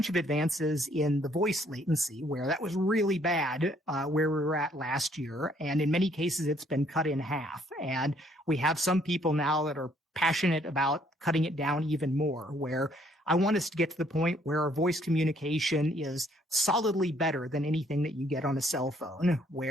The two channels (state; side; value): normal; both; correlation 0.65